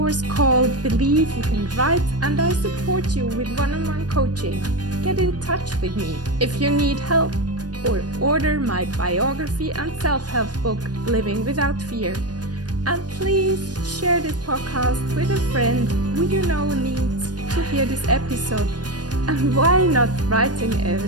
called Believe You Can Write, and I support you with one-on-one coaching. Get in touch with me if you need help, or order my biography and self-help book, Living Without Fear. And please share this podcast with a friend who you know needs to hear this episode. And why not writing a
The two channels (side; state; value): left; late; 0.69 ms